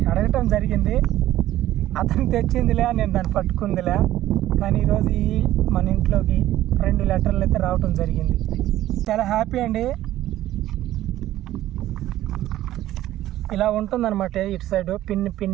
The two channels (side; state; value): left; quieter; 14.1 dB